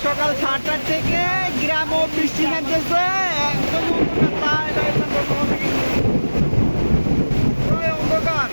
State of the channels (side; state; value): both; inverted; correlation -1.00